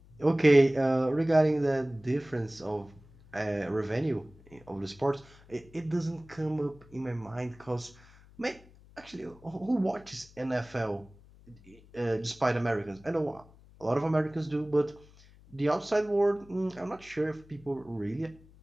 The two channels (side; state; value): left; noise; hum, 24 dB below the sound